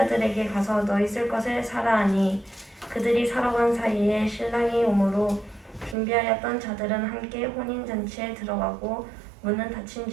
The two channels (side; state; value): left; drops out; at 6.0 s